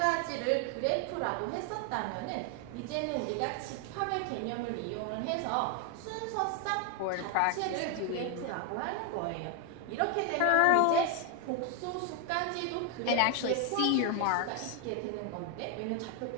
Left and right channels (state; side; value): different; both; correlation 0.01